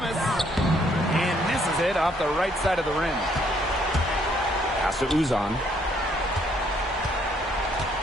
and misses it off the right side of the rim. Pass to Uzan.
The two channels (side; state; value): both; normal; correlation 0.68